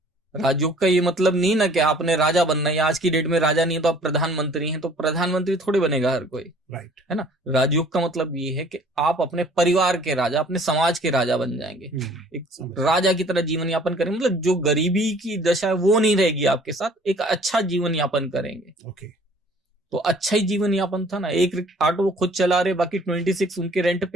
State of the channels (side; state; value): both; normal; correlation 0.54